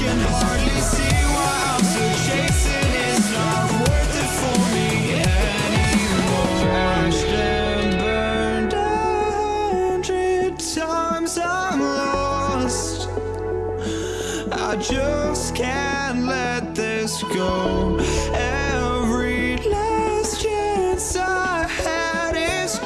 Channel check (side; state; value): both; identical; correlation 1.00